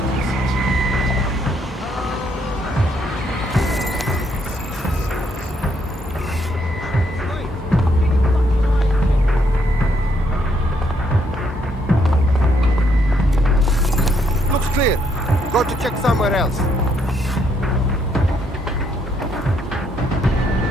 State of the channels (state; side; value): normal; both; correlation 0.73